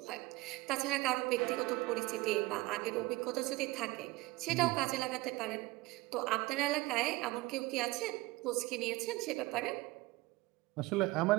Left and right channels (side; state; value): left; quieter; 20.8 dB